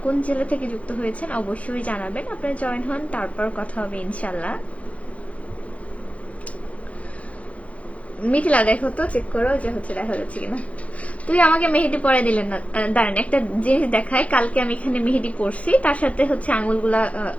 কোন জেলা থেকে যুক্ত হয়েছেন অবশ্যই জানাবেন। আপনারা জয়েন হন, তারপর কথা হবে ইনশাল্লাহ। মিথিলা দেখো তো, চেক করো যে হচ্ছে দেখা যাচ্ছে কিনা। তুই আমাকে মেহেদি পরে দিলেন না, দাঁড়ান একটা জিনিস দেখায়। কালকে আমি এখানে মেহেদি পরছি, তার সাথে হচ্ছে আঙুলগুলা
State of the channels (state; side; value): late; right; 0.065 ms